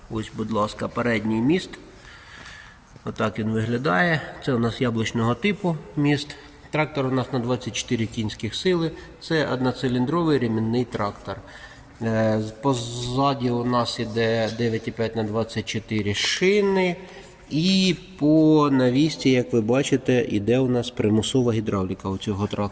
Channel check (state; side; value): identical; both; correlation 1.00